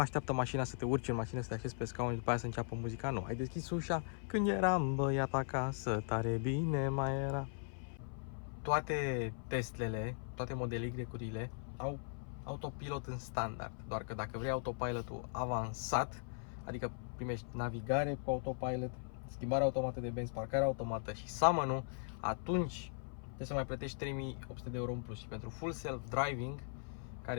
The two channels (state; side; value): silent; right; 52 dB below the other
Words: mașina să te urci în mașină, să te așezi pe scaun și după aia să înceapă muzica. Nu, ai deschis ușa, când eram băiat acasă, tare bine mai era. Toate Teslele, toate Model Y-urile au autopilot în standard. Doar că dacă vrei autopilotul avansat, adică primești navigare cu autopilot, schimbare automată de benzi, parcare automată și summon-ul, atunci trebuie să mai plătești 3.800 de euro în plus. Și pentru full self driving,